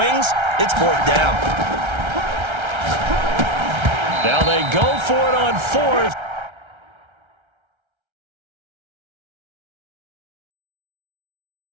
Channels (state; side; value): late; left; 1.3 ms